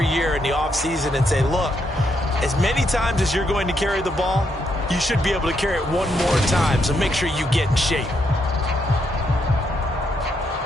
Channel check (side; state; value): both; normal; correlation 0.77